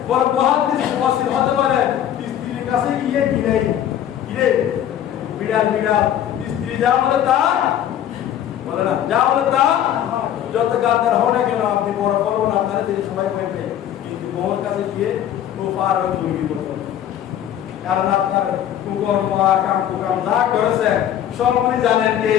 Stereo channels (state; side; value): quieter; right; 10.7 dB